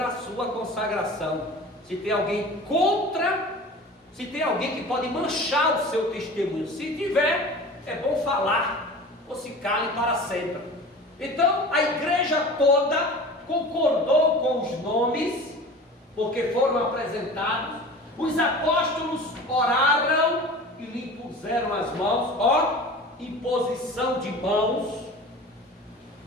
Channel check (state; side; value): normal; both; correlation 0.38